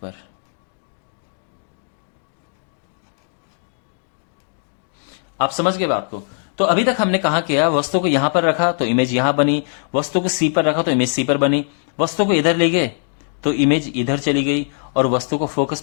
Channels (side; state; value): right; silent; 65 dB below the other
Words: आप समझ गए बात को? तो अभी तक हमने कहा किया, वस्तु को यहां पर रखा तो इमेज यहां बनी, वस्तु को सी पर रखा तो इमेज सी पर बनी, वस्तु को इधर ले गए तो इमेज इधर चली गई, और वस्तु को फोकस